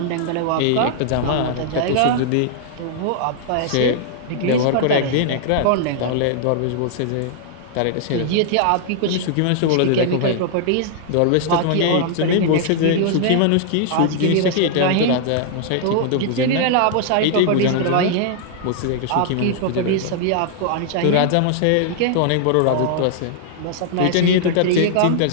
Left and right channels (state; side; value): different; both; correlation -0.01